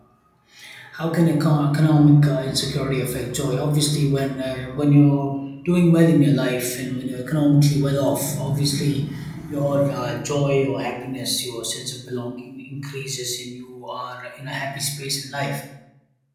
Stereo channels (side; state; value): both; identical; correlation 1.00